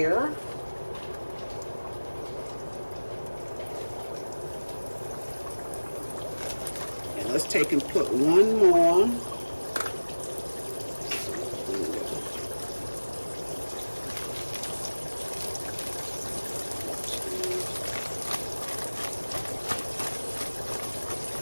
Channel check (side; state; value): both; inverted; correlation -1.00